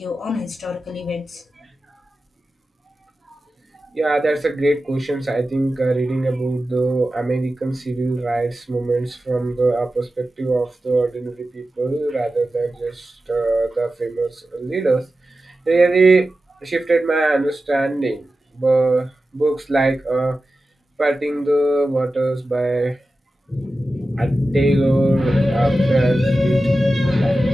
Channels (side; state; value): both; normal; correlation 0.93